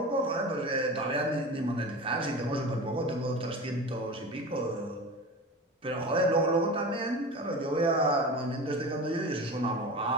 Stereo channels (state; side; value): normal; both; correlation 0.31